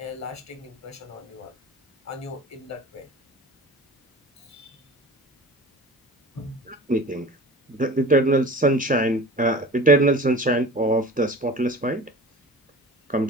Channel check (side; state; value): both; normal; correlation 0.39